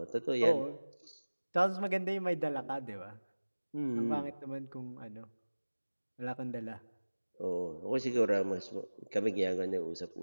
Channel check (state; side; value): inverted; both; correlation -1.00